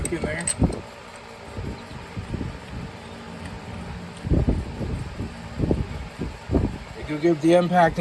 in there. You can give the impact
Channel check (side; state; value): both; identical; correlation 1.00